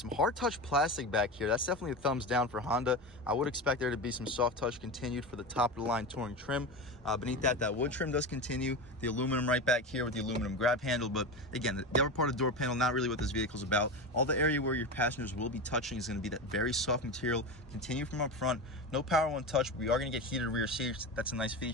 hard touch plastic back here. That's definitely a thumbs down for Honda. I would expect there to be some soft touch continued for the top of the line Touring trim. Beneath that wood trim does continue. The aluminum right back here with the aluminum grab handle. But again, the upper part of the door panel, not really what this vehicle's about. All the area where your passengers will be touching is gonna be that very soft material. Continue from up front. No power one touch, but we are gonna get heated rear seats. That's a nice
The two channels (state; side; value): normal; both; correlation 0.23